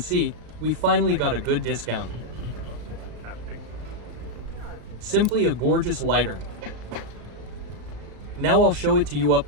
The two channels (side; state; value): left; late; 35 ms